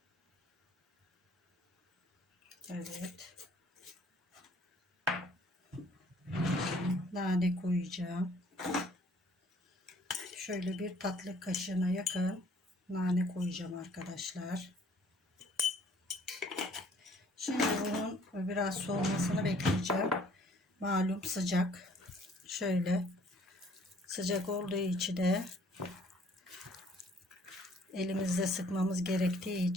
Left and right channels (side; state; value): both; normal; correlation 0.58